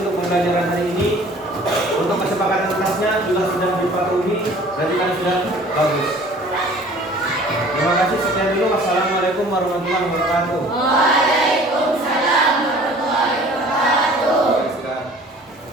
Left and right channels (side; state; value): both; normal; correlation 0.49